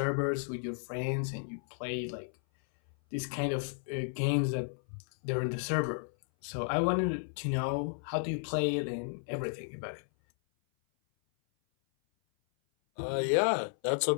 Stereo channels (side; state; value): right; silent; 56 dB below the other